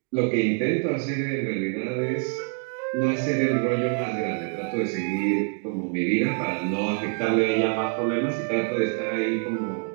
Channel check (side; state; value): left; quieter; 39.6 dB